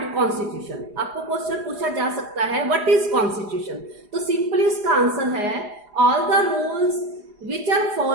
कॉन्स्टिट्यूशन। आपको क्वेश्चन पूछा जा सकता है व्हाट इज कॉन्स्टिट्यूशन, तो सिंपली उसका आंसर है all the rules which are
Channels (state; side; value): late; left; 4.9 ms